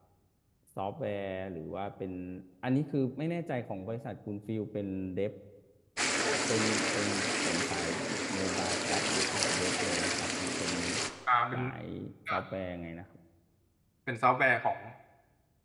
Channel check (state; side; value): identical; both; correlation 1.00